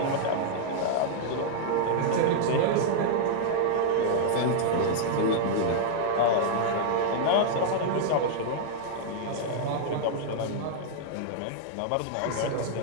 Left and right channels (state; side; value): different; both; correlation -0.01